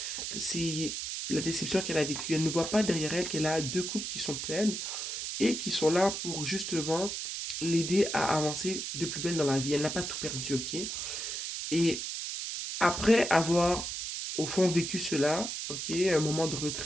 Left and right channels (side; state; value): right; noise; hiss, 4 dB below the sound